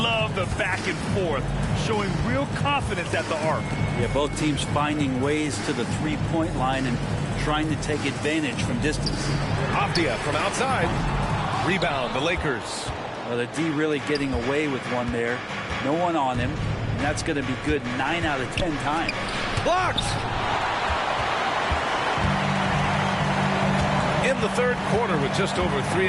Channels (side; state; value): both; identical; correlation 1.00